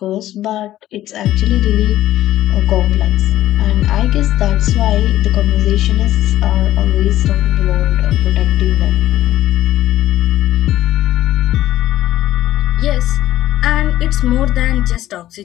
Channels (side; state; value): right; quieter; 13.8 dB